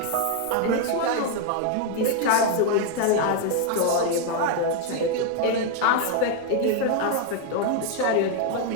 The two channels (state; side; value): different; both; correlation 0.01